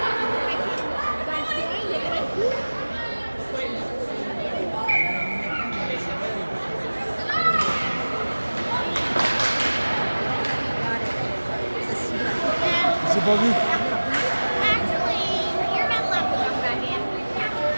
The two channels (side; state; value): both; inverted; correlation -1.00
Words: J'ai pas vu.